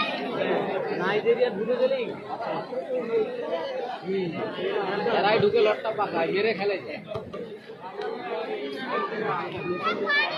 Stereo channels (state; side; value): identical; both; correlation 1.00